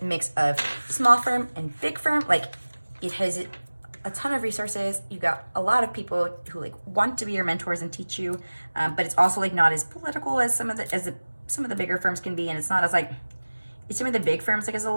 mix of small firm and big firm. Like, it has a ton of resources. You got a lot of people who like want to be your mentors and teach you, but it's also like not as political as some of the bigger firms can be, and it's not as like some of the big firms. Like, as a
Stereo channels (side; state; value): both; inverted; correlation -1.00